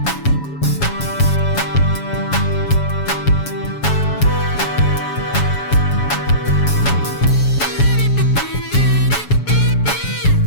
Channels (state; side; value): late; right; 7.1 ms